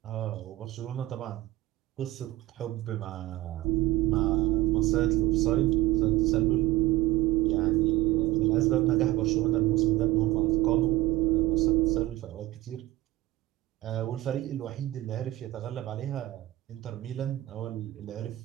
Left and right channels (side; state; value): left; quieter; 17.2 dB